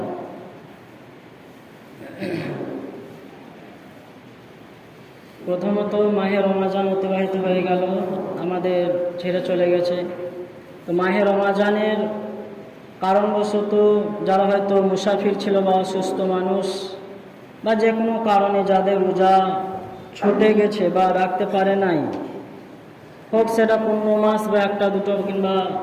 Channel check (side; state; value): both; identical; correlation 1.00